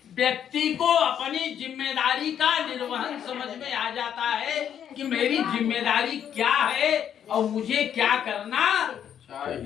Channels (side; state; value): right; quieter; 9.2 dB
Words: व्यक्ति को अपनी जिम्मेदारी का निर्वहन समझ में आ जाता है कि मेरी जिम्मेदारी क्या है और मुझे क्या करना